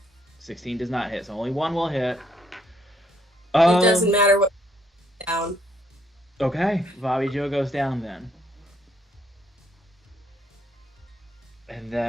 16 does not hit, so only one will hit. it doesn't matter what down. Okay, Bobby Joe goes down then. And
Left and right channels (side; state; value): both; normal; correlation 0.70